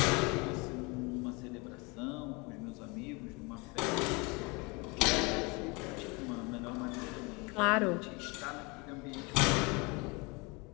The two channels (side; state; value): right; quieter; 28.0 dB